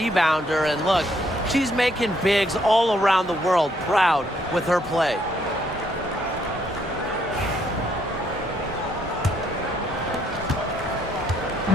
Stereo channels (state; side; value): normal; both; correlation 0.70